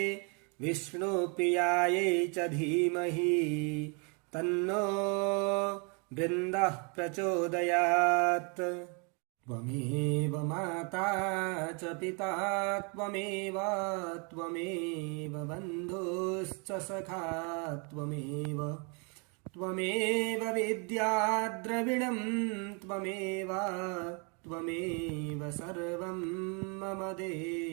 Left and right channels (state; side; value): quieter; left; 35.1 dB